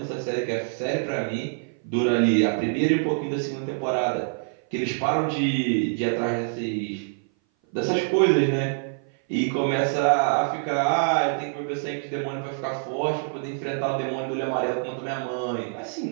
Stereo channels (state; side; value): silent; left; 58 dB below the other